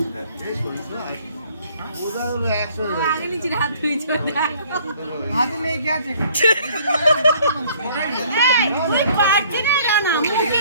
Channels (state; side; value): inverted; both; correlation -0.59